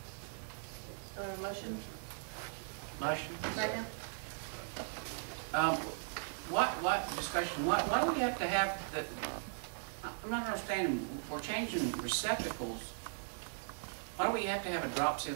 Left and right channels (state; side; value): silent; left; digital silence